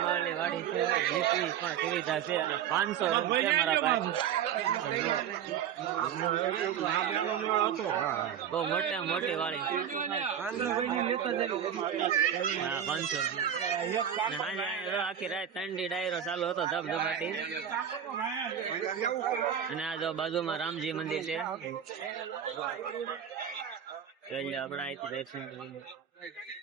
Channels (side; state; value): left; quieter; 8.9 dB